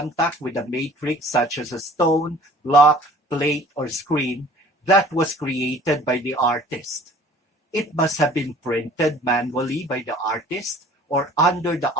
with a matrix such as a stone, block, plate, or screen that was created by the artist. It must have been printed manually by the artist or under the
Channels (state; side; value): normal; both; correlation 0.50